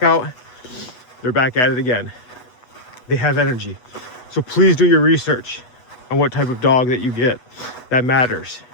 out. They're back at it again. They have energy. So please do your research on what type of dog that you get. That matters.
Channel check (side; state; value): right; late; 8.1 ms